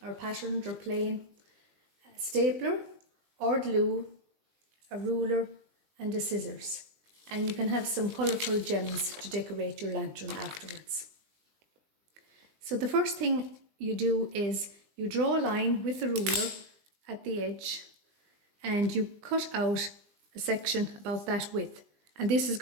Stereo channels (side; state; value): left; late; 20 ms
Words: or patterned or plain, a stapler or glue, a ruler and a scissors. And you can have some colourful gems to decorate your lantern afterwards. So the first thing you do is you draw a line with the ruler at the edge and you cut out a section about that width, and this is